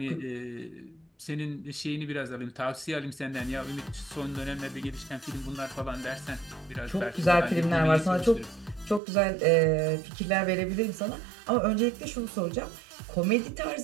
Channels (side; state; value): left; drops out; at 9.0 s